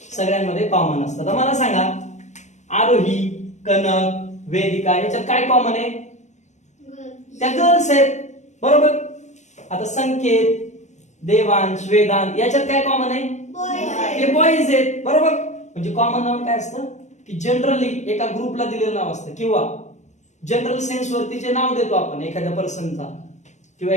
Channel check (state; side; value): late; right; 0.34 ms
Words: सगळ्यांमध्ये कॉमन असतं. तर मला सांगा, आरोही, कनक, वेदिका याच्यात काय कॉमन आहे? त्या गर्ल्स आहेत. बरोबर. आता संकेत, देवांश, वेदांत याच्यात काय कॉमन आहे? ते बॉईज आहेत. बरोबर. म्हणजे कॉमन नाउन काय असतं की जनरली एका ग्रुपला दिलेलं नाव असतं किंवा जनरल सेन्स वरती जे नाव देतो आपण एखाद्या पर्सनचा किंवा